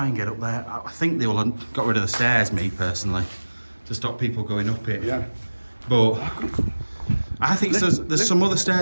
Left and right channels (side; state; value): both; inverted; correlation -1.00